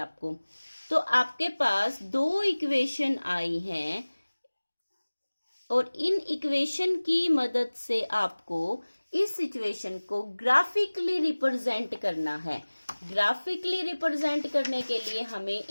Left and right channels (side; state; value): both; inverted; correlation -1.00